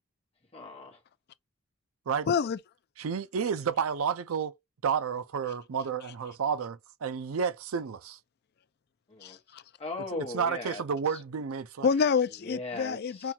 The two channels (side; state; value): both; normal; correlation -0.17